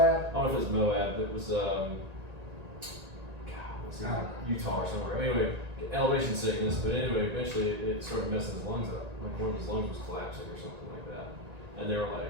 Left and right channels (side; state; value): left; late; 1.9 ms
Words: I don't know if it was Moab. It was Utah or somewhere. Anyway, elevation sickness. But anyway, eventually it started messing his lungs up. Like one of his lungs was collapsing or something like that. And they were